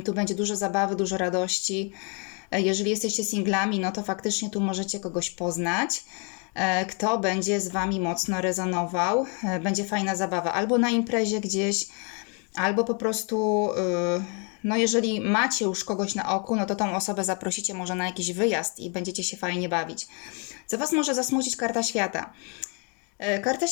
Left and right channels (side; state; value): right; quieter; 36.3 dB